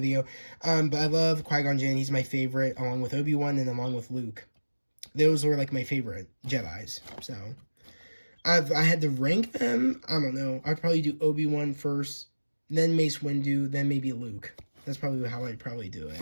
But I love Qui-Gon Jinn. He's my favorite, along with Obi-Wan and along with Luke. Those were, my favorite Jedis. So, I had to rank them. I don't know. I'd probably do Obi-Wan first, then Mace Windu, then maybe Luke. That's probably how I'd probably do it.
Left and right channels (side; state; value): both; inverted; correlation -1.00